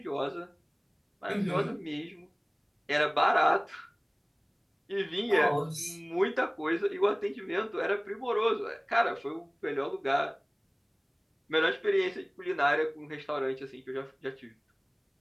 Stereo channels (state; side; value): identical; both; correlation 1.00